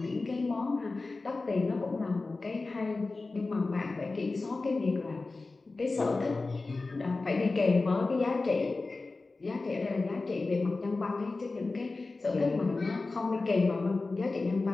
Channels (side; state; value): right; quieter; 3.6 dB